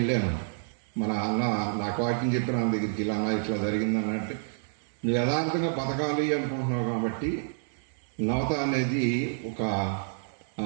మన అన్న నాకు వాక్యం చెప్పిన అన్న దగ్గరికి, ఇలా అన్న ఇట్లా జరిగిందనంటే, నువ్వు యథార్థంగా బతకాలి అనుకుంటున్నావు కాబట్టి నవత అనేది ఒక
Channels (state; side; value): silent; left; digital silence